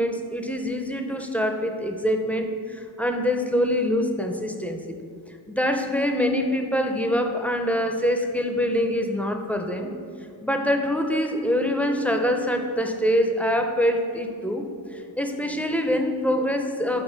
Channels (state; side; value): normal; both; correlation 0.56